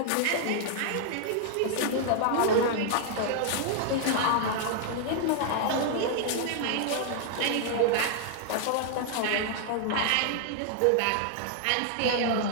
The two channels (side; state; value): both; different; correlation 0.00